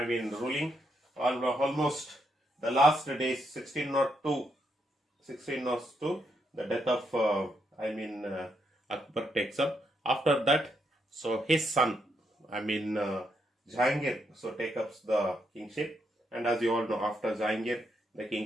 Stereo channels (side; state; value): both; normal; correlation 0.79